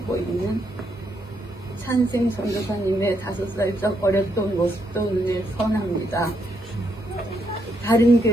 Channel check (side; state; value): both; normal; correlation 0.77